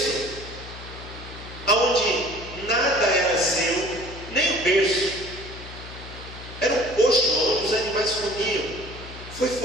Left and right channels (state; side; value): noise; left; hum, 14 dB below the sound